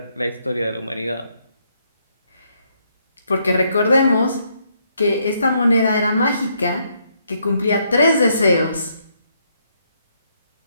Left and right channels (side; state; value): both; inverted; correlation -0.74